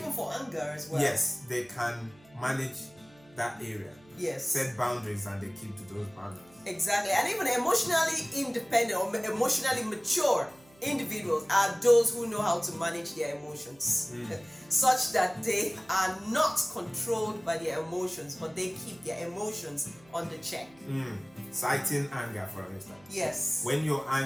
for anger as well. Yes, they can manage that area. Yes. Set boundaries and they keep to those boundaries. Exactly. And even emotionally independent or emotionally mature individuals are those who know how to manage their emotions such that they are not controlled by their emotions, but they keep their emotions under check. Citing anger, for instance. Yes. When you're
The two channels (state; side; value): noise; right; hum, 27 dB below the sound